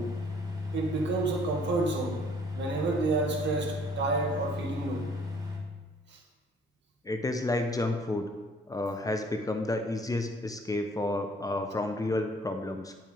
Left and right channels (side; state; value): both; normal; correlation 0.59